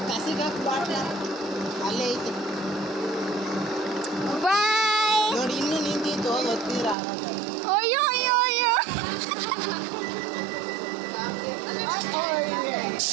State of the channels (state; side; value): drops out; left; at 7.0 s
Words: ಕಸಿಗೆ ಬಾಟ್ಲ ಅಲ್ಲೇ ಐತೆ ಬಾಯ್. ನೋಡಿ, ಇನ್ನೂ ನಿಂತಿತ್ತು ಗೊತ್ತೀರಾ? ಅಯ್ಯೋ ಅಯ್ಯೋ ಅಯ್ಯೋ.